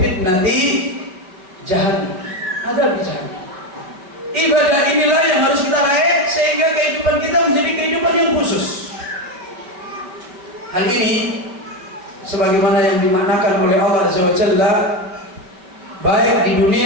jahannam. Adzab jahannam. Ibadah inilah yang harus kita raih sehingga kehidupan kita menjadi kehidupan yang khusus. Hal ini sebagaimana yang dimaknakan oleh Allah Azza wa Jalla baik di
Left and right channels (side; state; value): left; late; 5.2 ms